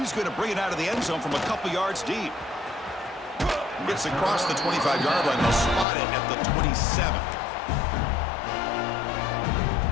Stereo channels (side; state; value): right; drops out; at 5.9 s